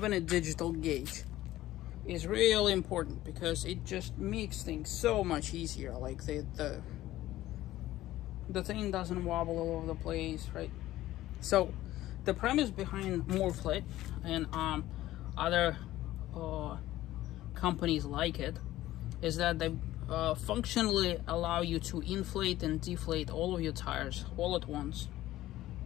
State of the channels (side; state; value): right; quieter; 15.2 dB